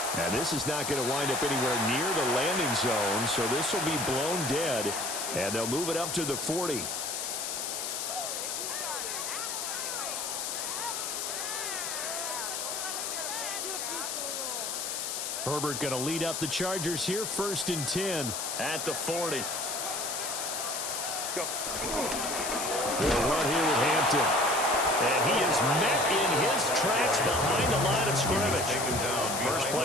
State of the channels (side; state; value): left; noise; hiss, 3 dB below the sound